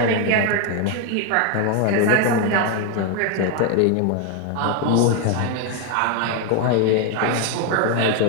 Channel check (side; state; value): both; different; correlation 0.01